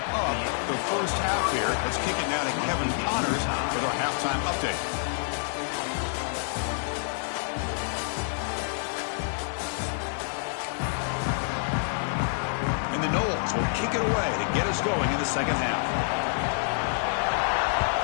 up the first half here. Let's kick it now to Kevin Connors with our halftime update. And the Knowles will kick it away to get us going in the second half.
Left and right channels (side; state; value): right; silent; digital silence